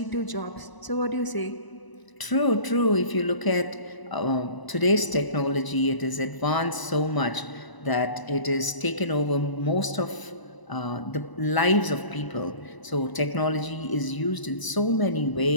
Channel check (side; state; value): right; late; 1.0 ms